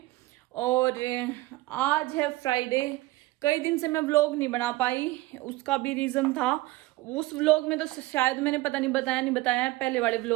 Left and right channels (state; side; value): quieter; left; 19.1 dB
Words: और आज है फ्राइडे। कई दिन से मैं व्लॉग नहीं बना पाई, उसका भी रीज़न था। उस व्लॉग में तो शायद मैंने पता नहीं बताया है पहले वाले